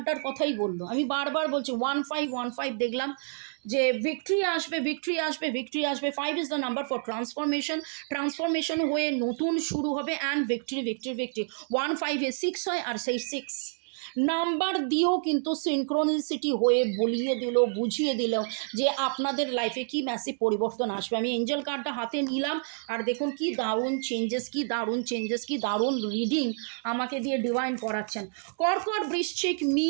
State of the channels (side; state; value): left; silent; digital silence